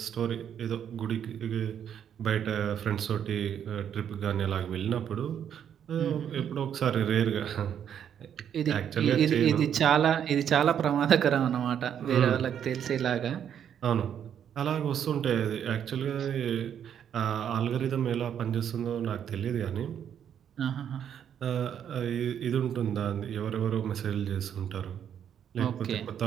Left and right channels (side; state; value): left; quieter; 9.0 dB